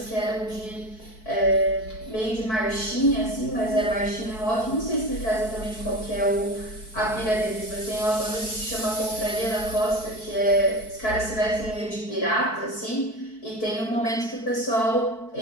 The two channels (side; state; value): right; late; 4.6 ms